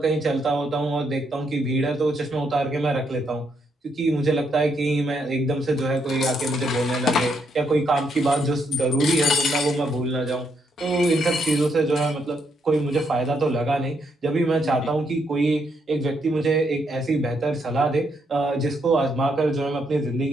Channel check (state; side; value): normal; both; correlation 0.76